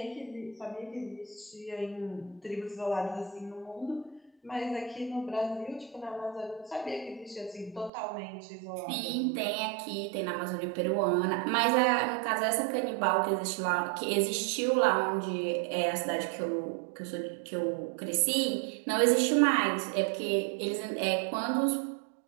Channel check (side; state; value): left; drops out; at 7.9 s